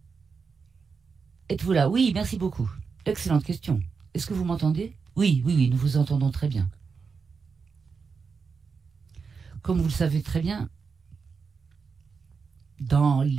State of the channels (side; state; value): left; quieter; 5.3 dB